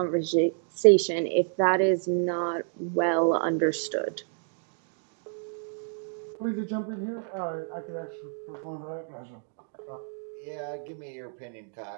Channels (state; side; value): silent; left; digital silence